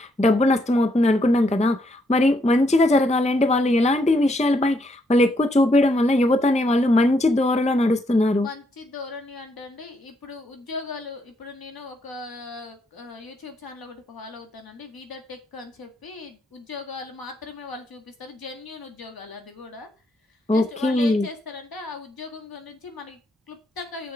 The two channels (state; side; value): normal; both; correlation 0.75